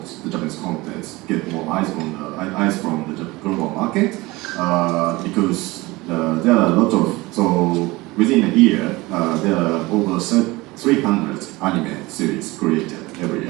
the Japanese content, get more eyes from the global market, because there are a lot of, so within a year, there are over 300 anime series created every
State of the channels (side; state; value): left; quieter; 21.4 dB